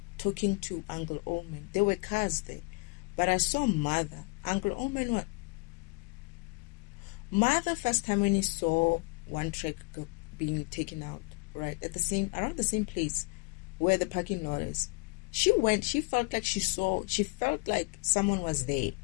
talking to Uncle Oman. There were cars there. But I saw Mother. Uncle Oman, what? Mother, first time when he saw one truck being taken out, right, around the same place where the parking lot is, she felt like someone was there.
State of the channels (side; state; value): right; quieter; 29.4 dB